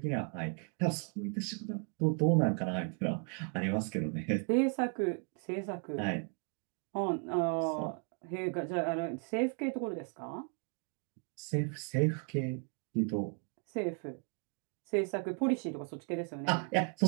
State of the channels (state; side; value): quieter; left; 39.9 dB